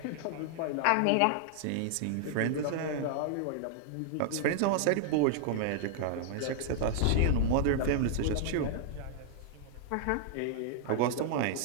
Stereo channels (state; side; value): different; both; correlation -0.01